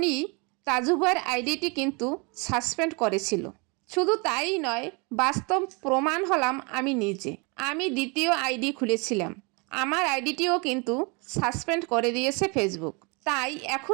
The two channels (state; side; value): quieter; left; 30.8 dB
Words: তাজু ভাইয়ের আইডিটি কিন্তু সাসপেন্ড করেছিল। শুধু তাই নয়, বাস্তব প্রমাণ হলাম আমি নিজে। আমি দ্বিতীয় আইডি খুলেছিলাম, আমার আইডিটিও কিন্তু সাসপেন্ড করে দিয়েছে ফেসবুক। তাই